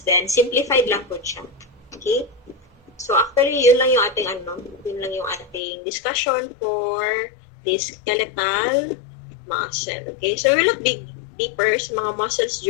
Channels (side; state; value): right; drops out; at 5.6 s